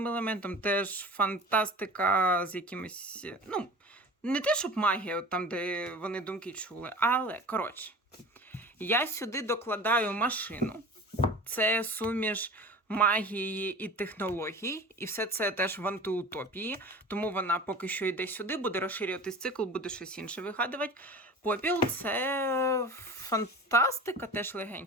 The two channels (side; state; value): both; normal; correlation 0.37